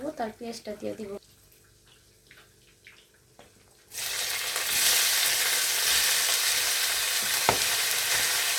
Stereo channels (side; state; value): both; identical; correlation 1.00